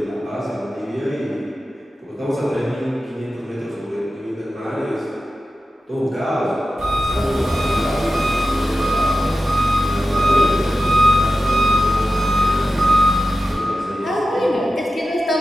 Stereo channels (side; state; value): both; normal; correlation 0.93